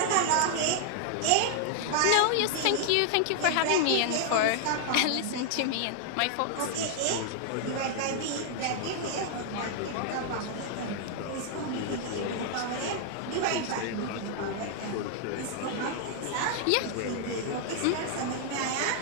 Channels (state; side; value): different; both; correlation -0.01